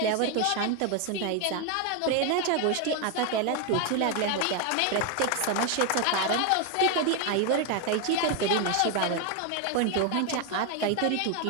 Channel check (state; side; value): different; both; correlation 0.01